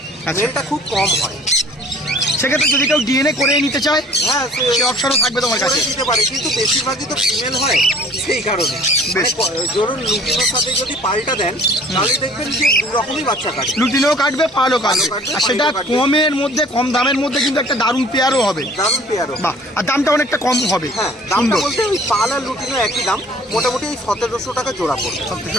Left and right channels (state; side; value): normal; both; correlation 0.51